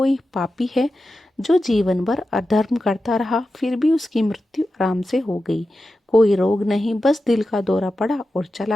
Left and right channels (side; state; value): both; normal; correlation 0.92